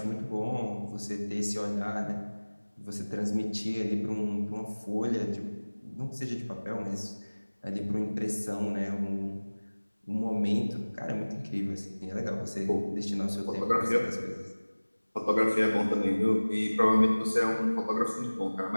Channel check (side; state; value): both; inverted; correlation -1.00